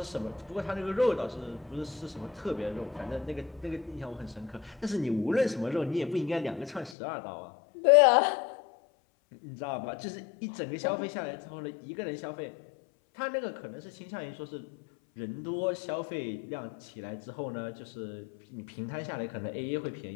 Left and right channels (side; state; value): right; drops out; at 7.0 s